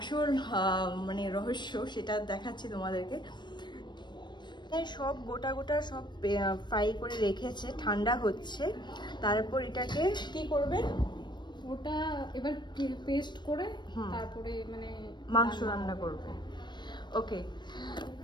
মানে রহস্য, সেটা দেখাচ্ছি তোমাদেরকে। সব গোটা গোটা সব ফ্রাই করে রেখেছে, ঠান্ডা হচ্ছে, তারপর এটাকে কি করবে, ওটা এবার পেস্ট করে তারপরে মানে মাংস রান্না করবে। ওকে,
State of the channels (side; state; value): right; late; 0.22 ms